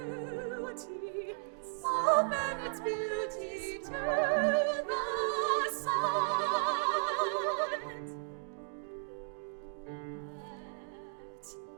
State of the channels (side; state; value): left; silent; digital silence